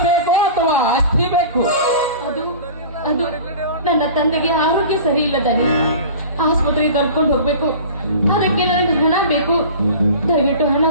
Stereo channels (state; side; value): inverted; both; correlation -0.39